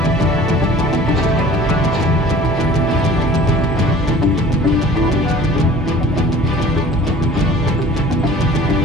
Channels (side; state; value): both; normal; correlation 0.47